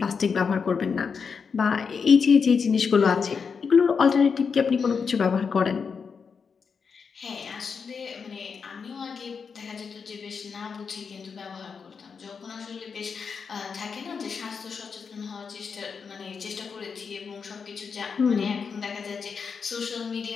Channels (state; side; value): quieter; right; 5.8 dB